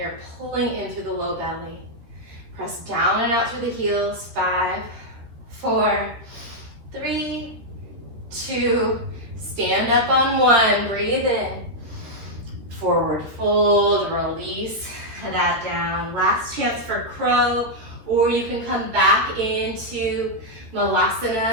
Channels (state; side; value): late; left; 13 ms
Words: pulling in through the low belly. Press down and out through the heels. 5, 4, 3, 2, stand up on 1, breathe in. Forward fold, release that down. Last chance for crow, or you can come back into